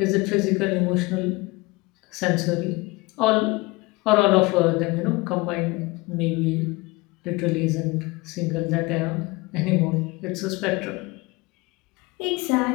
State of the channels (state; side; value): quieter; right; 23.6 dB